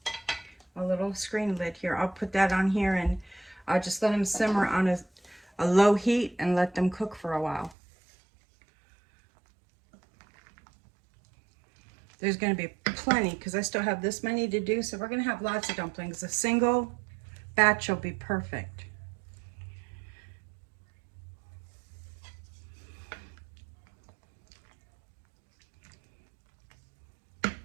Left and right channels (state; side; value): drops out; left; at 7.8 s